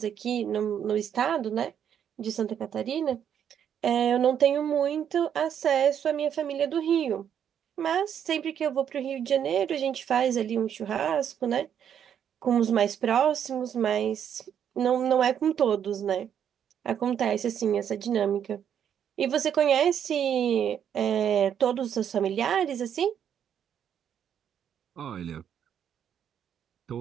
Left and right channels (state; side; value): quieter; left; 8.9 dB